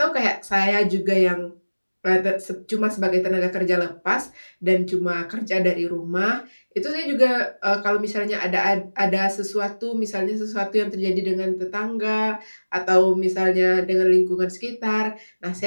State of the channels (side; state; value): both; inverted; correlation -1.00